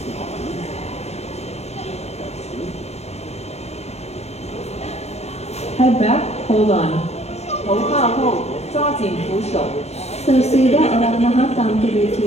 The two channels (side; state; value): right; late; 0.31 ms